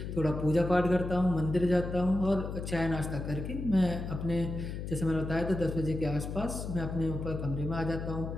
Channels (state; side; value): noise; left; hum, 6 dB below the sound